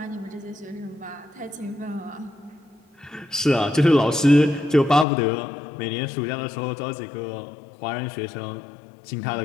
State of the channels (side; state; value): right; drops out; at 5.1 s